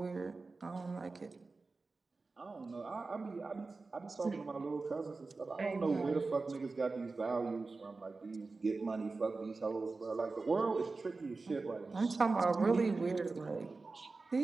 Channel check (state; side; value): quieter; left; 3.8 dB